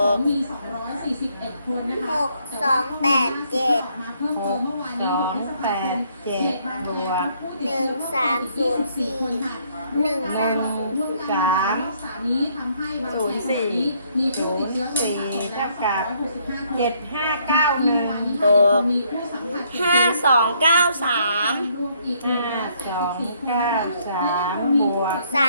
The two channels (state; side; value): inverted; both; correlation -0.68